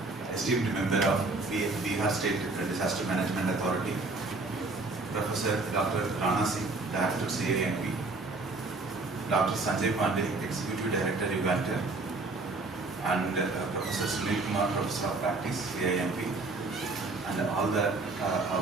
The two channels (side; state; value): left; quieter; 3.4 dB